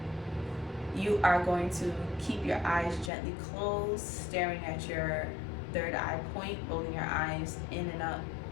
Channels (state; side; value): drops out; right; at 3.1 s